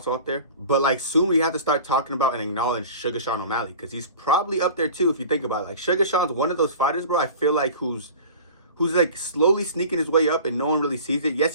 up there. But like, soon we have to start talking about and acknowledge Suga Sean O'Malley, because he's probably up there too if you think about it. Like, Suga Sean's one of those fighters, bro, I feel like who's like slowly sneaking his way up and no one really sees it.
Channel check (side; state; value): both; inverted; correlation -0.40